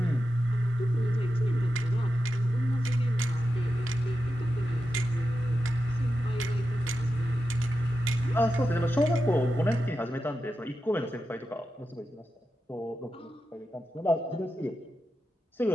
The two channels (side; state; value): both; normal; correlation 0.90